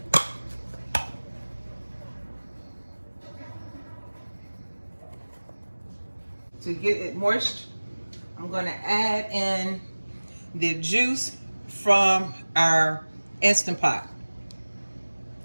To get it moist, I'm gonna add in the juice from our Instant Pot.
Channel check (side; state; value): both; inverted; correlation -1.00